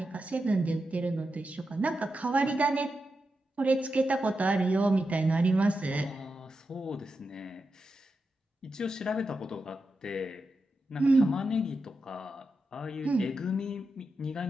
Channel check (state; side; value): normal; both; correlation 0.88